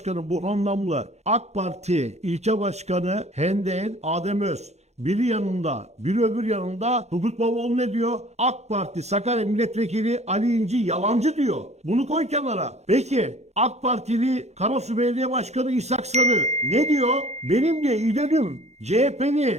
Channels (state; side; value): late; left; 0.32 ms